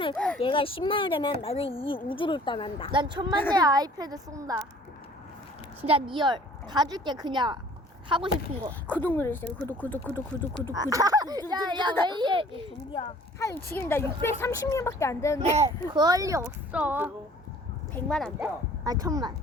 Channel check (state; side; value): normal; both; correlation 0.52